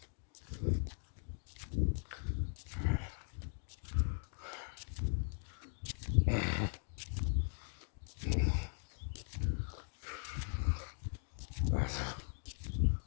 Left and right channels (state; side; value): silent; right; 51 dB below the other